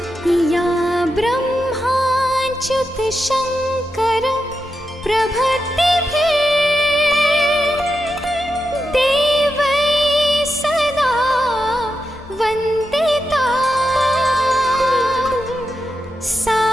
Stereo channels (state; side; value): normal; both; correlation 0.88